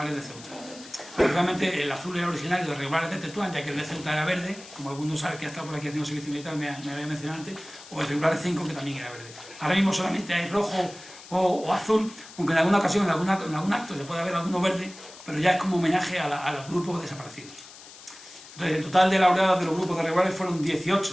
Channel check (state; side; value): noise; left; hiss, 18 dB below the sound